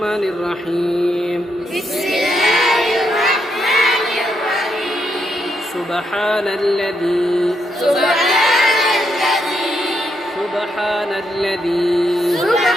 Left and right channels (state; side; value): normal; both; correlation 0.79